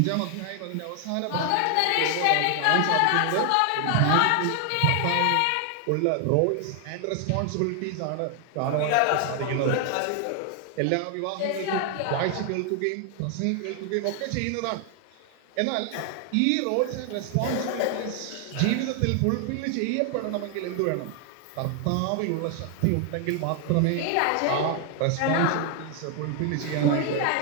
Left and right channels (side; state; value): both; different; correlation 0.00